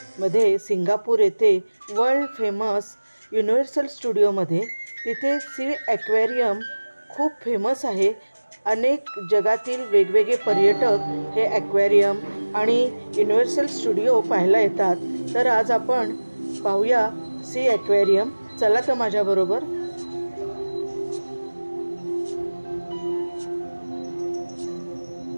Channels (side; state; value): both; inverted; correlation -1.00